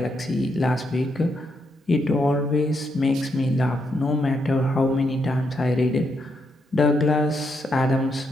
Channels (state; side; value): normal; both; correlation 0.80